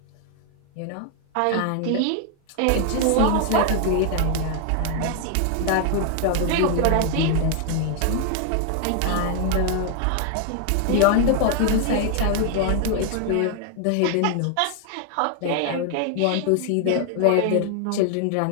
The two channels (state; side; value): different; both; correlation 0.00